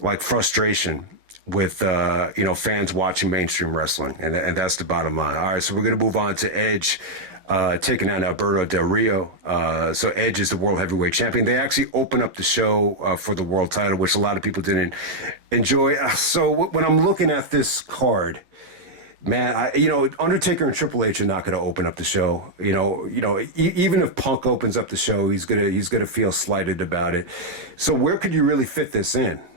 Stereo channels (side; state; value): left; late; 11 ms